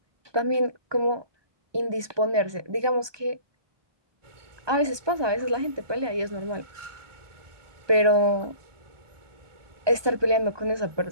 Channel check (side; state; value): left; late; 1.2 ms